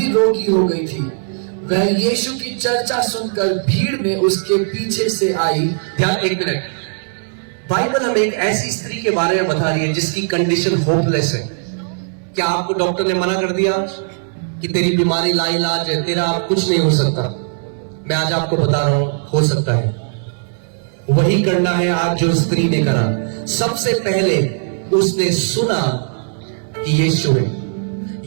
रोगी हो गई थी। वह यीशु की चर्चा सुनकर भीड़ में उसके पीछे से आई। ध्यान, एक मिनट। बाइबल हमें एक ऐसी स्त्री के बारे में बता रही है जिसकी कंडीशन होपलेस है। क्या आपको डॉक्टर ने मना कर दिया कि तेरी बीमारी लाइलाज है, तेरा आप कुछ नहीं हो सकता? मैं आज आपको बता रहा हूं, हो सकता है। वही करना है आज जो स्त्री ने करा। सबसे पहले उसने सुना कि यीशु है,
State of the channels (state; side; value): silent; left; digital silence